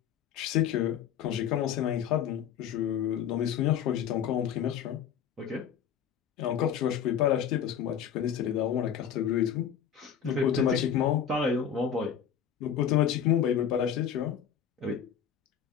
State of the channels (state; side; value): quieter; right; 8.5 dB